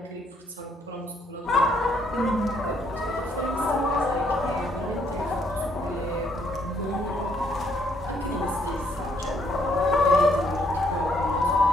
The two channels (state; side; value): normal; both; correlation 0.69